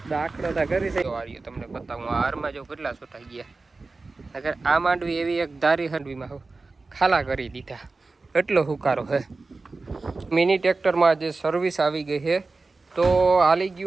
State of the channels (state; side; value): quieter; left; 3.7 dB